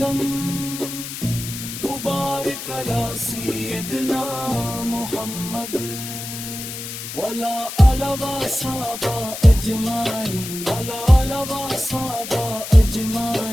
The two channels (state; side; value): noise; left; hiss, 9 dB below the sound